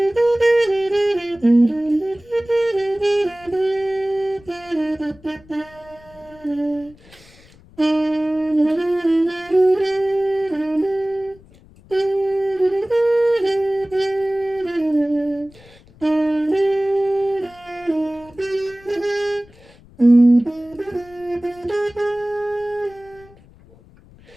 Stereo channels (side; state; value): left; noise; rumble, 25 dB below the sound